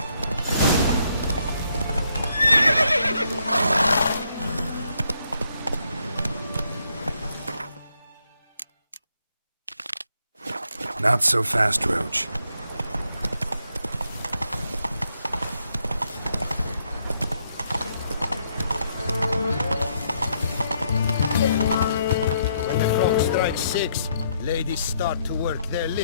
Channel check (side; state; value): both; inverted; correlation -0.74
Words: Not so fast, Roach. When the clock strikes 6, ladies start to work their